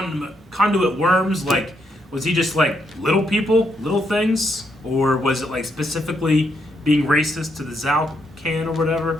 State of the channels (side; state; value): both; normal; correlation 0.78